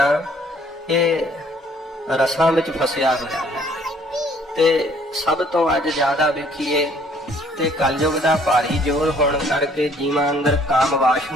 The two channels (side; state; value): both; normal; correlation 0.60